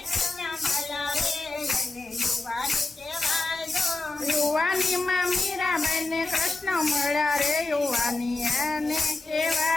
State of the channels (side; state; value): right; quieter; 3.1 dB